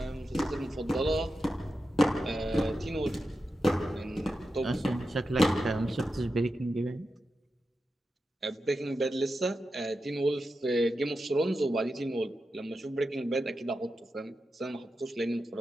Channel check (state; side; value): normal; both; correlation 0.90